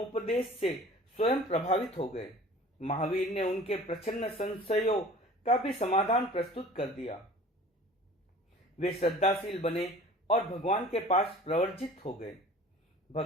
से स्वयं प्रभावित हो गए। महावीर ने उनके प्रच्छन्न संशयों का भी समाधान प्रस्तुत कर दिया। वे श्रद्धाशील बने और भगवान के पास प्रवर्जित हो गए।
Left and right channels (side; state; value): both; normal; correlation 0.45